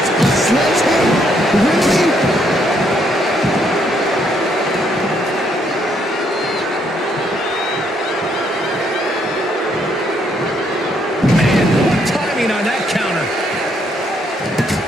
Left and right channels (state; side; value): normal; both; correlation 0.72